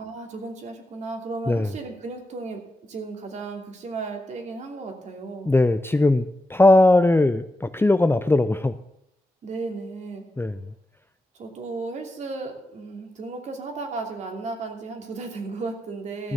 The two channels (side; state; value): both; normal; correlation 0.88